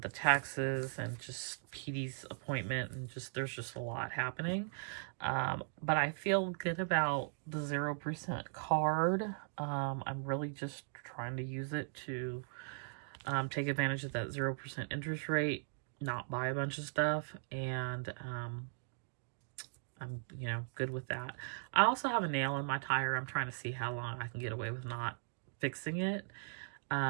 the taxes and just PD's appointment, and there's just a lot happening. But I feel good about the 0% card. I'm really just trying to use it to take advantage of that 0% interest rate, not buy a bunch of stuff, and I'm, good with that. I also have a nail in my tire. I'm trying to see how long I can get away with not fixing it.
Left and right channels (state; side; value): silent; left; digital silence